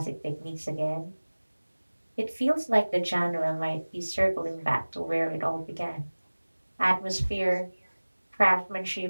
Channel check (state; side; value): inverted; both; correlation -1.00